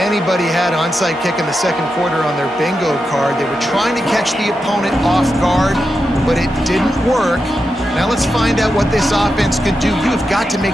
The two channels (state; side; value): normal; both; correlation 0.88